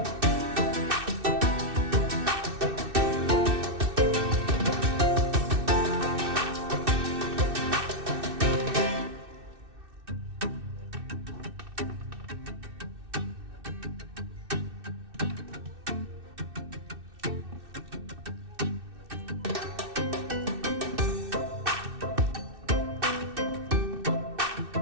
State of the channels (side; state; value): left; late; 2.6 ms